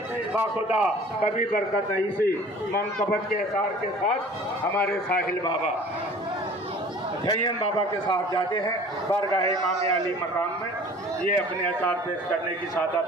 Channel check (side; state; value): both; normal; correlation 0.47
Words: बाखुदा कभी बरकत नहीं। इसी मनकबत के एसार के साथ हमारे साहिल बाबा झय्यन बाबा के साथ जाते हैं बारगाह इमाम अली मकाम में। ये अपने अचार पेश करने की